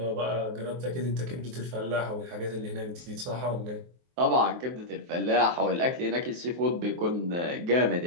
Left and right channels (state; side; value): late; left; 23 ms